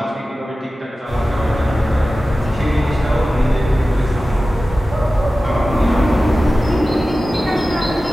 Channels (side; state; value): both; normal; correlation 0.95